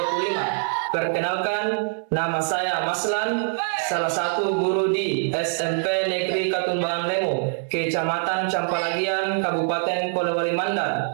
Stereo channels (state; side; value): silent; left; 63 dB below the other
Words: Perkenalkan, nama saya Maslan, salah satu guru di SMP Negeri Katumbangan Lemo, Kecamatan Campalagian, Kabupaten Polewali Mandar,